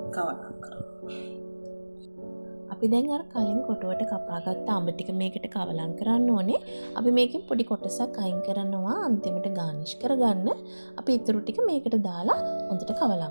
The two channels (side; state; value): both; inverted; correlation -1.00